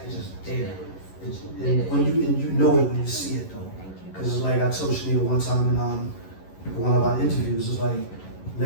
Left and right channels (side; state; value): right; late; 11 ms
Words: just there. And you know it when you see it though, because it's like I told Shanita one time in one of our interviews. It's like